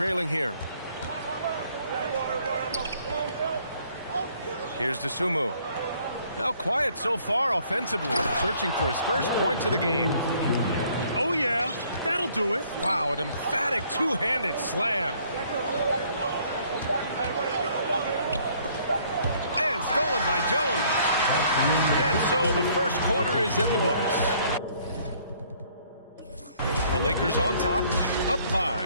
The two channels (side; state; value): both; inverted; correlation -0.62